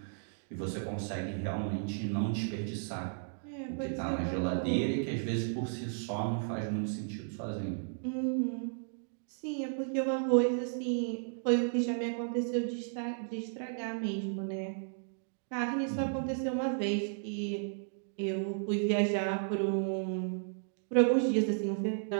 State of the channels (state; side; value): silent; left; digital silence